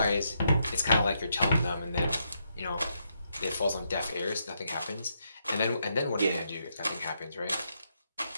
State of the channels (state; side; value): inverted; both; correlation -0.79